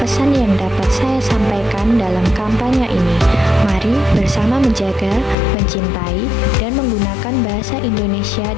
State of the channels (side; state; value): right; drops out; at 5.4 s